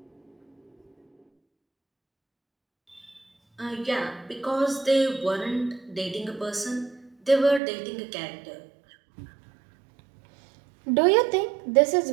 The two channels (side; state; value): left; drops out; at 7.6 s